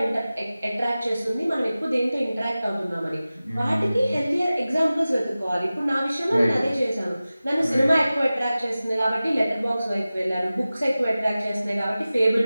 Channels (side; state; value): both; inverted; correlation -0.96